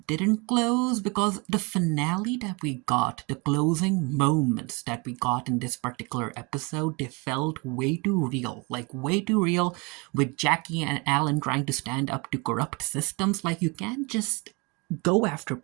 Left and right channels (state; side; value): quieter; left; 28.9 dB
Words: close because the finale that we got, the closing moments that we got in this particular episode, they felt way too real. Like, way too real, with Jackie and Alan trying to stand up to corrupt systems. Like, you can't just go after